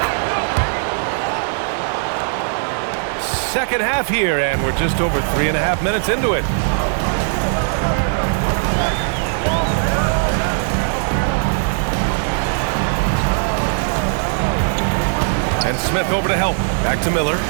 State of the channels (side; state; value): left; silent; digital silence